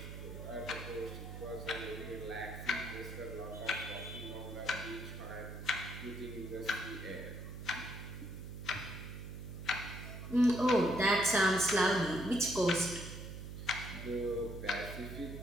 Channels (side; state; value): right; noise; hum, 8 dB below the sound